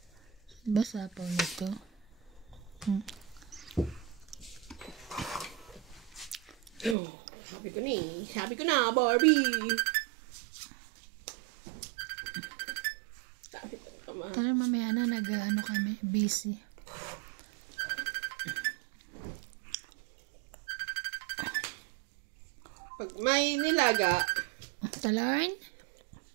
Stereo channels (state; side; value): drops out; left; at 7.0 s